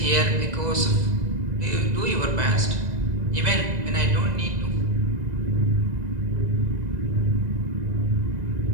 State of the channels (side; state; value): left; late; 2.0 ms